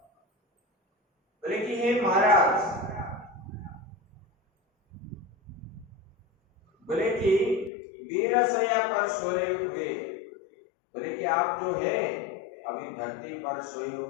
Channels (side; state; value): right; drops out; at 7.7 s